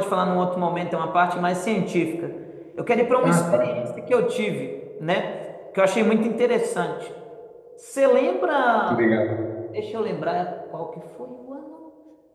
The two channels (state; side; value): identical; both; correlation 1.00